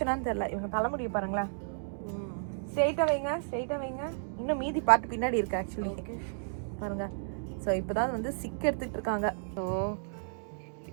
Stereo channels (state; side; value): silent; left; digital silence